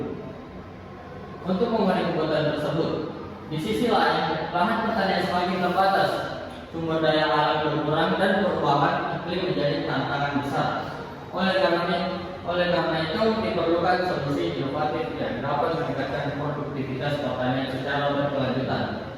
Untuk memenuhi kebutuhan tersebut, di sisi lain, lahan pertanian semakin terbatas, sumber daya alam berkurang dan perubahan iklim menjadi tantangan besar. Oleh karena itu, diperlukan solusi inovatif yang dapat meningkatkan produktivitas pertanian secara berkelanjutan.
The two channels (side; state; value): both; identical; correlation 1.00